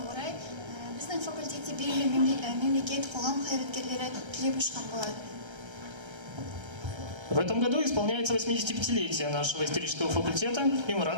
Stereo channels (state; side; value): late; left; 1.3 ms